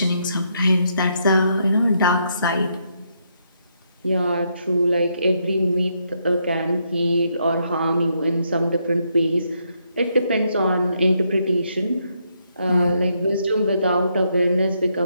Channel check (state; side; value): inverted; both; correlation -0.77